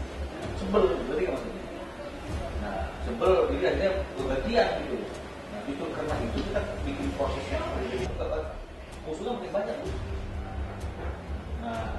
sebel, berarti kan maksudnya. Nah, sebel jadi akhirnya bergantian gitu. Nah, justru karena itu kita bikin prosesnya seperti itu. Musuhnya makin banyak tuh. Nah,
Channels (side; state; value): both; identical; correlation 1.00